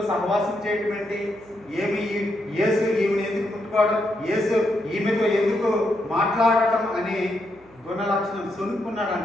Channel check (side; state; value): right; noise; hum, 29 dB below the sound